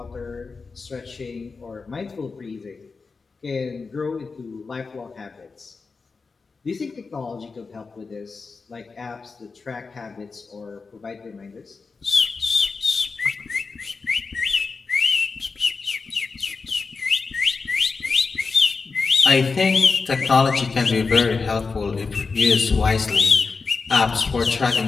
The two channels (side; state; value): right; quieter; 4.5 dB